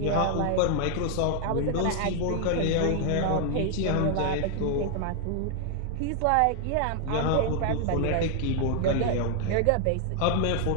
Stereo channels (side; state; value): both; different; correlation 0.00